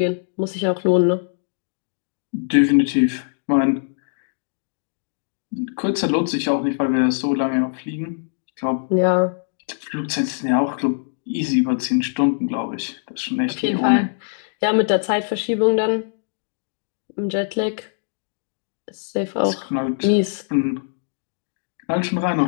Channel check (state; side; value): silent; right; digital silence